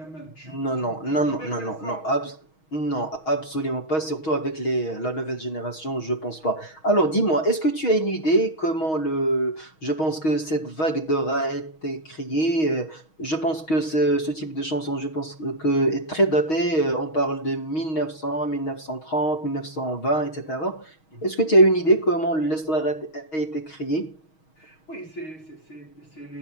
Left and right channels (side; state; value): right; late; 6.3 ms